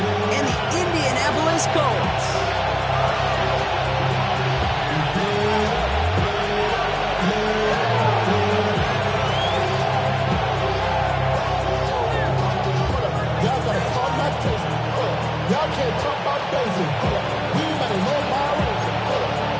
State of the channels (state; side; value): identical; both; correlation 1.00